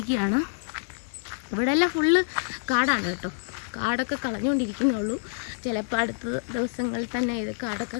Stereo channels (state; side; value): silent; right; 60 dB below the other